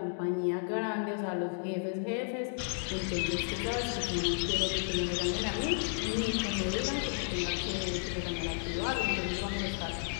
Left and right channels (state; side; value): silent; right; digital silence